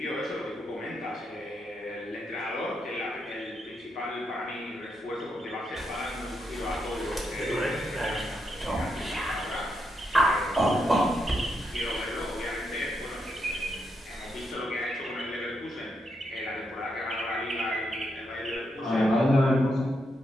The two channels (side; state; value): both; normal; correlation 0.81